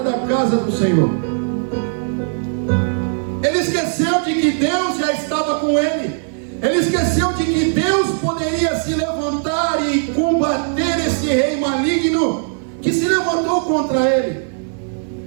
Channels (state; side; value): silent; left; 64 dB below the other